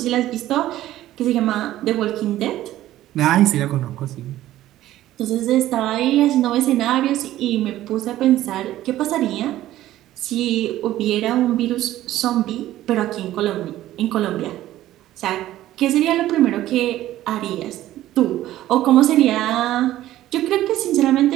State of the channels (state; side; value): quieter; left; 14.2 dB